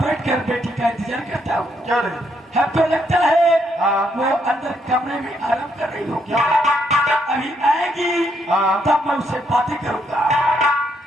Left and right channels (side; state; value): both; normal; correlation 0.75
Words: बैठकर बेटी का इंतजार करता हूँ। हमको लगता है वो अंदर कमरे में आराम कर रही होगी। अभी आएगी तब मैं उससे बातें करूंगा।